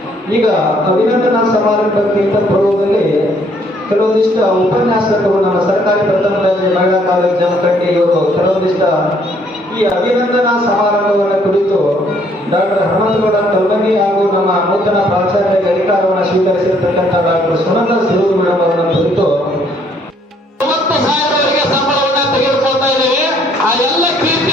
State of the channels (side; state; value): both; normal; correlation 0.65